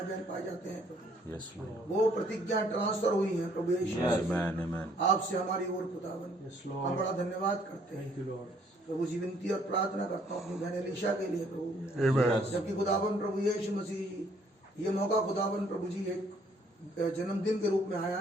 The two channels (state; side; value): normal; both; correlation 0.64